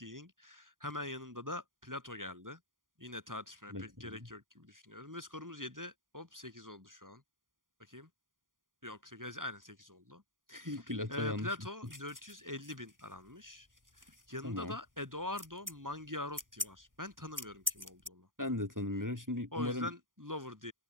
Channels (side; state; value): left; late; 0.90 ms